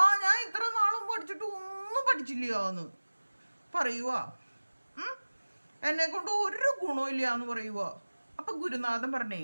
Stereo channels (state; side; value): inverted; both; correlation -1.00